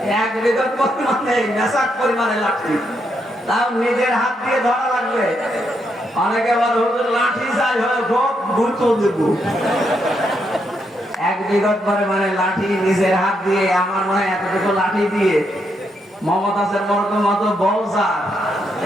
এক বিঘত পরিমাণে মেশাক পরিমাণে লাঠি, তাও নিজের হাত দিয়ে ধরা লাগবে। অনেকে বলে হুজুর লাঠি চাই হয় খুব গুরুত্ব দেব, এক বিঘত পরিমাণে লাঠি নিজের হাত দিয়ে, আমার মনে হয় এতটুকু লাঠি দিয়ে মমতাজের মতো বল স্যার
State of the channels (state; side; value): normal; both; correlation 0.79